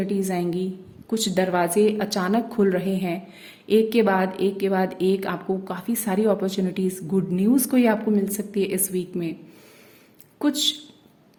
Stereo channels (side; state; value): both; identical; correlation 1.00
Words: आएंगी, कुछ दरवाजे अचानक खुल रहे हैं, एक के बाद एक के बाद एक आपको काफ़ी सारी अपॉर्चुनिटीज, गुड न्यूज़ कोई आपको मिल सकती है इस वीक में। कुछ